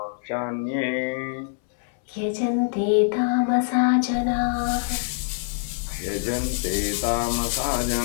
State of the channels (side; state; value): right; silent; 62 dB below the other